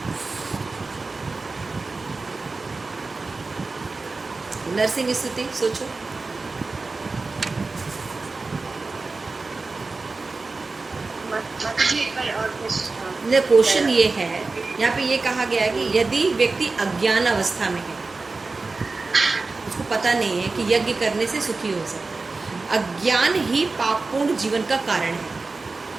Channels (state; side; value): quieter; left; 3.8 dB